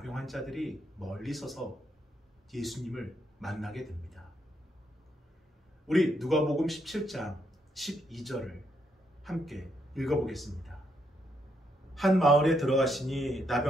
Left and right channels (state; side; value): normal; both; correlation 0.77